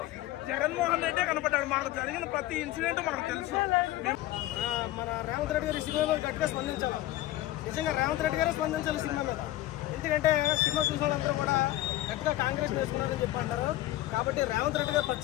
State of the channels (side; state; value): right; quieter; 15.5 dB